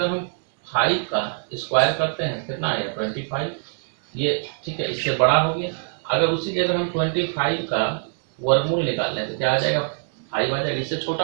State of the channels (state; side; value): silent; left; digital silence